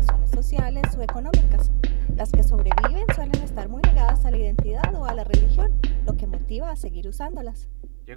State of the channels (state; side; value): silent; left; 58 dB below the other